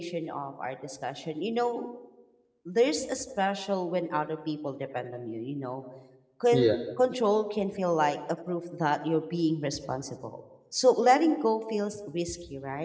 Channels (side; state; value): both; identical; correlation 1.00